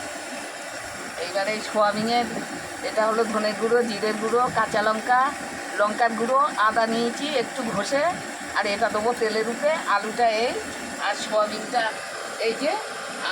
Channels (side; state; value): both; identical; correlation 1.00